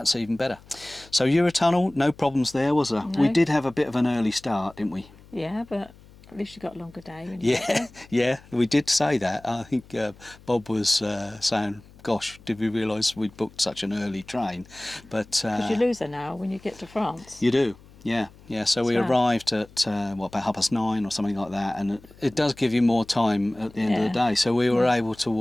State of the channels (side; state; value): left; noise; hum, 24 dB below the sound